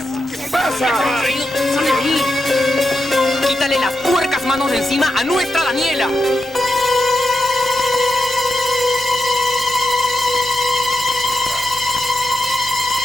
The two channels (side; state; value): both; normal; correlation 0.87